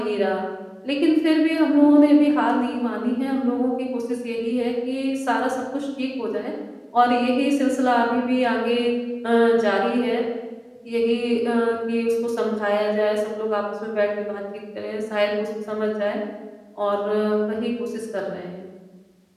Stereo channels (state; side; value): identical; both; correlation 1.00